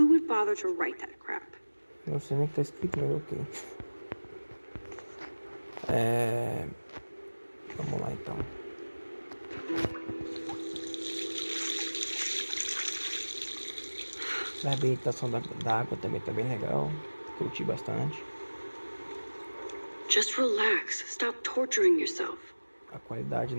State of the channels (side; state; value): both; inverted; correlation -1.00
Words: would bother to write that crap? Não sei nem o que tá escrito, mas ok. Vamos lá então. A reabilitação da água também tá bem legal. Curti bastante. Just relax. Stop torturing yourself. A qualidade